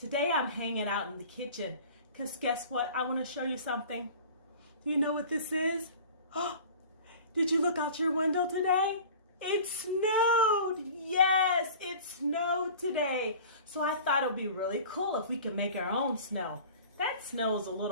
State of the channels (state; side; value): inverted; both; correlation -0.42